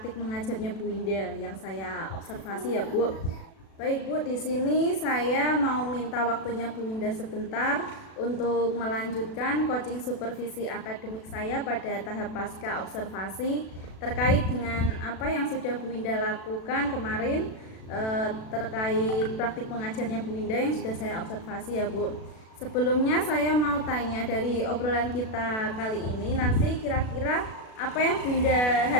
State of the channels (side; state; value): right; late; 36 ms